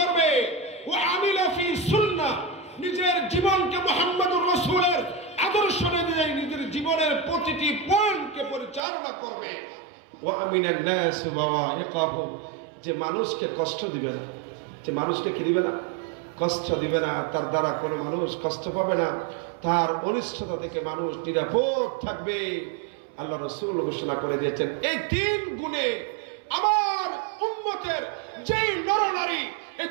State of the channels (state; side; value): drops out; left; at 8.8 s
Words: ও আমিলা ফি সুন্নাহ, নিজের জীবনকে মুহাম্মদুর রাসূলের আদর্শ অনুযায়ী নিজের জীবনের প্রতিটি পয়েন্টকে পরিচালনা করবে, ও আমিনান নাস বাওয়াইকাহুম, যে মানুষকে কষ্ট দিবে না, যে মানুষকে কি দিবে না? কষ্ট দিবে না। তার দ্বারা কোনো মানুষ কষ্ট পাবে না, তার অনিষ্টতা থেকে মানুষ নিরাপদ থাকবে। আল্লাহ রাসূল ঘোষণা করে দিয়েছেন, এই তিন গুণে আমার উম্মতের যেই নরনারী এই